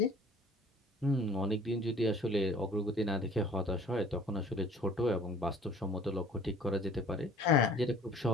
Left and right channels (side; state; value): both; normal; correlation 0.51